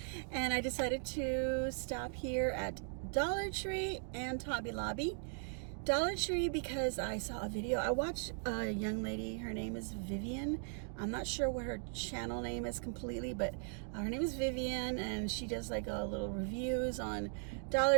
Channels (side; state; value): left; silent; 52 dB below the other